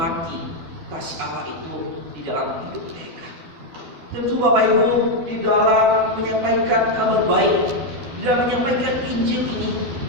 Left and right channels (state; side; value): late; left; 12 ms